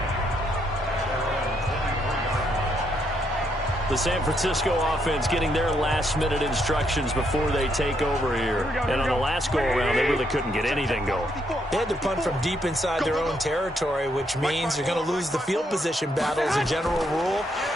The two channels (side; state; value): both; normal; correlation 0.75